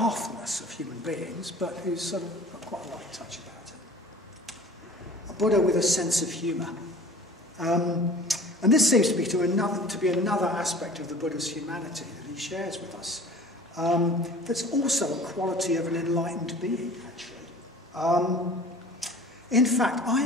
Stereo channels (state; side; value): normal; both; correlation 0.45